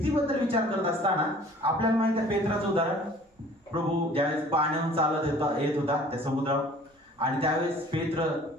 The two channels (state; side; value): normal; both; correlation 0.50